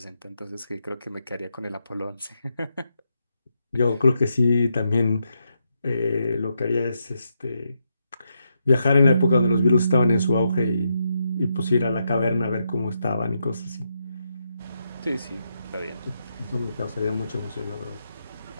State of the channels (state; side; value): inverted; both; correlation -0.82